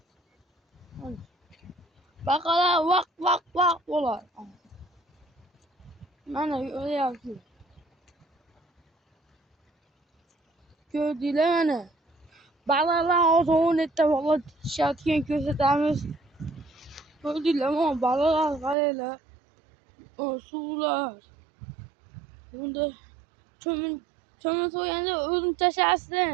Bakala vak olar. Ben öyle yapıyorum. Gördüler beni. Bağlarlar o zaman etti valla şartken göstermez. Gördüler ama bağlarlar kaleyle. O sular. Bunda çömül soyanda özüm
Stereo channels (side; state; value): left; drops out; at 18.8 s